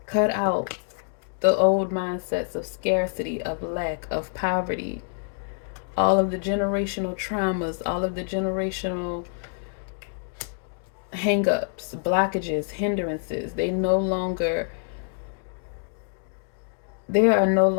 Cut out the old mindsets of scarcity, of lack, of poverty, all of the generational traumas, all of the generational hang-ups, blockages, hindrances. There are no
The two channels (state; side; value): silent; right; digital silence